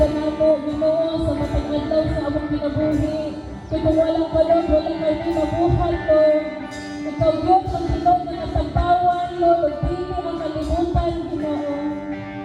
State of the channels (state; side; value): identical; both; correlation 1.00